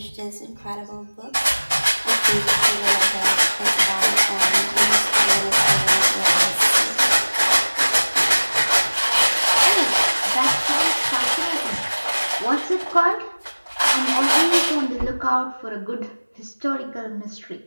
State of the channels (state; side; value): inverted; both; correlation -1.00